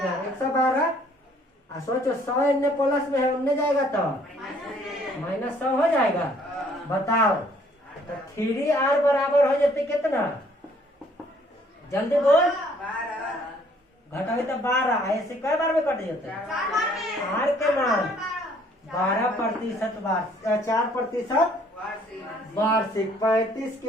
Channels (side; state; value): both; normal; correlation 0.61